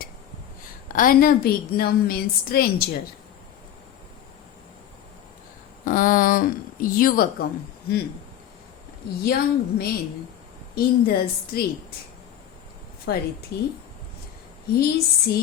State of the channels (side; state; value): right; quieter; 10.8 dB